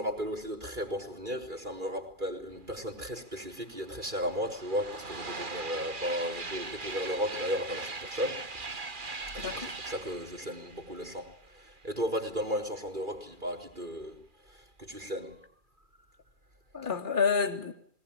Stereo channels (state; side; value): late; left; 2.4 ms